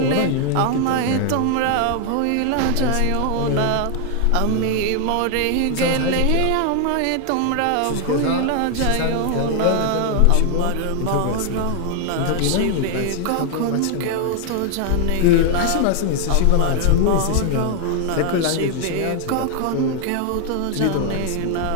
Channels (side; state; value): both; different; correlation 0.00